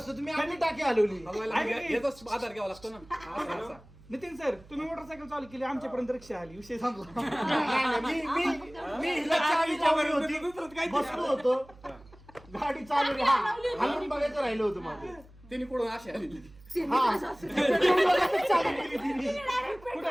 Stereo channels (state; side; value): noise; right; hum, 23 dB below the sound